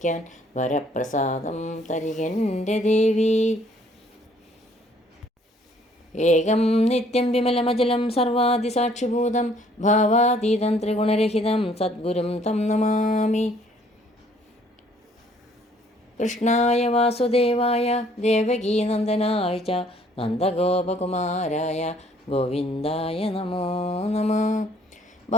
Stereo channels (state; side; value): normal; both; correlation 0.61